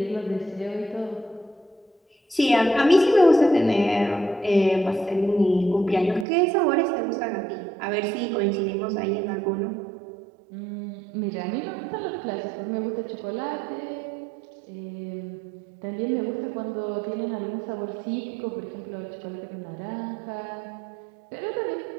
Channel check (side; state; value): left; drops out; at 6.2 s